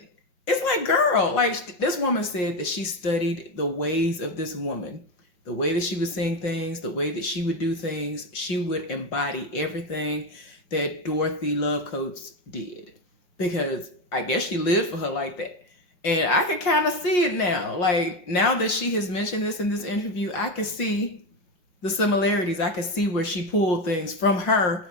it's like, girl, like this woman said that she studied the ways of this woman, the way that she would sing things, the way that she would do things. She would embody everything that Dorothy Love Coates did, because I guess she lived for her like that. And I can kind of see it now. Like, now that she has mentioned this in this interview, I can see the similarities. I can see where she pulled things from her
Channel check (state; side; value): late; right; 5.6 ms